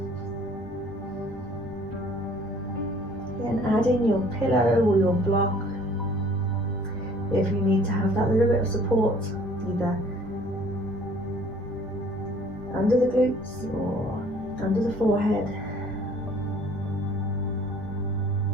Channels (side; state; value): both; normal; correlation 0.54